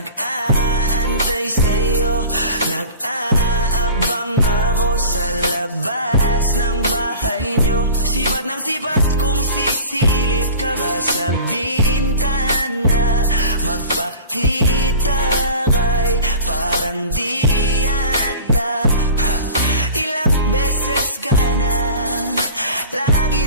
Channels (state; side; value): inverted; both; correlation -0.40